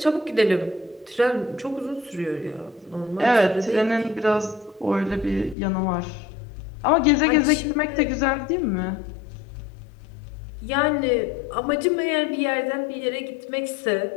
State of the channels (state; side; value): drops out; right; at 5.6 s